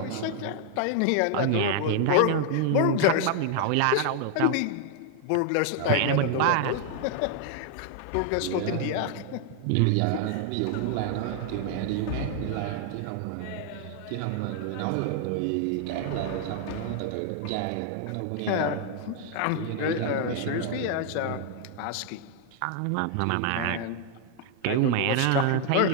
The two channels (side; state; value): both; different; correlation 0.00